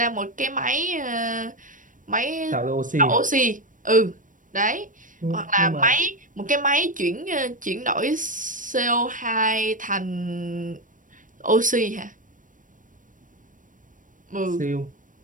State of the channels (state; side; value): late; left; 0.38 ms